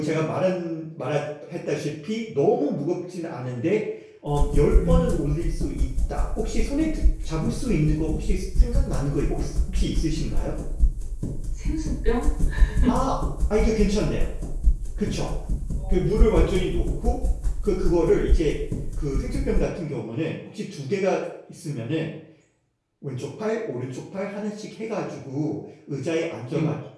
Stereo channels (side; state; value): both; identical; correlation 1.00